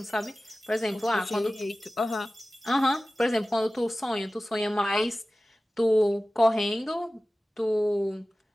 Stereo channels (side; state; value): both; normal; correlation 0.97